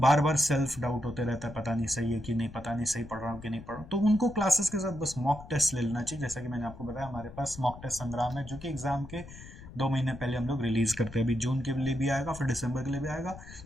बार सेल्फ डाउट होते रहता है, पता नहीं सही है कि नहीं, पता नहीं सही पढ़ रहा हूँ कि नहीं पढ़ रहा हूँ, तो उनको क्लासेस के साथ बस मॉक टेस्ट ले लेना चाहिए। जैसा कि मैंने आपको बताया, हमारे पास मॉक टेस्ट संग्राम है, जो कि एग्जाम के 2 महीने पहले हम लोग रिलीज करते हैं। अभी जून के लिए भी आएगा, फिर दिसंबर के लिए भी आएगा।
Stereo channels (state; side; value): noise; left; rumble, 16 dB below the sound